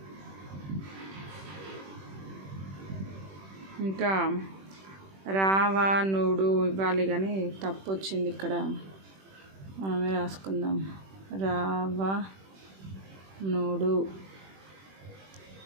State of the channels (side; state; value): left; late; 21 ms